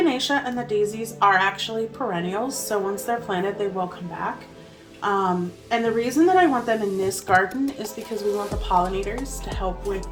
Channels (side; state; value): both; identical; correlation 1.00